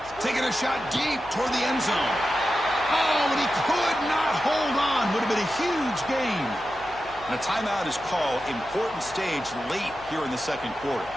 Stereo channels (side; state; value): left; noise; hum, 22 dB below the sound